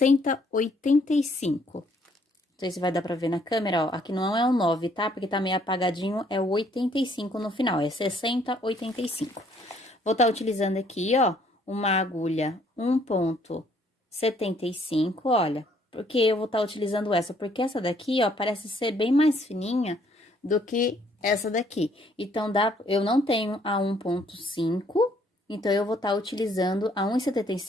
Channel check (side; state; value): both; normal; correlation 0.65